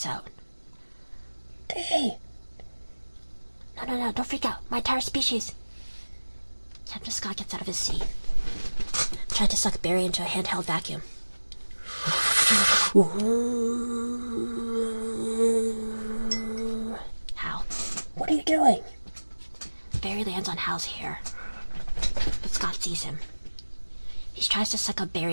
out. Hey! No, don't freak out. My entire species. Captain Scott gets out of his seat. Tried to suck Barry into a handheld vacuum. Hal. What are you doing? Barry lands on Hal's hair, but Scott sees him. He tries to suck up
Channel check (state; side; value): inverted; both; correlation -1.00